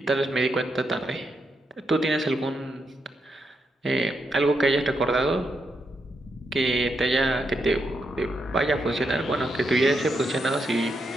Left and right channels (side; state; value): both; normal; correlation 0.82